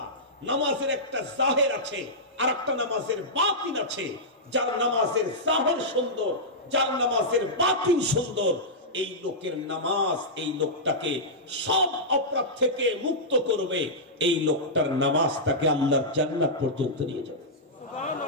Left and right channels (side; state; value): both; normal; correlation -0.12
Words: নামাজের একটা জাহির আছে আর একটা নামাজের বাতিন আছে। যার নামাজের জাহির সুন্দর, যার নামাজের বাতিন সুন্দর, এই লোকের নামাজ এই লোকটাকে সব অপরাধ থেকে মুক্ত করবে। এই লোকটার নামাজ তাকে আল্লাহর জান্নাত পর্যন্ত নিয়ে যাবে।